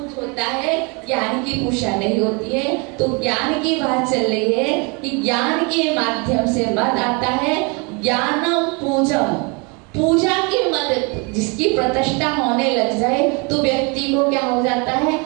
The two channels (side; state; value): left; quieter; 30.8 dB